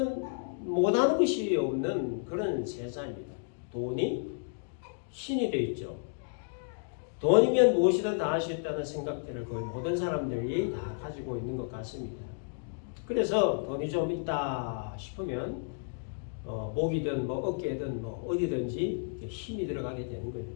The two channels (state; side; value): silent; right; digital silence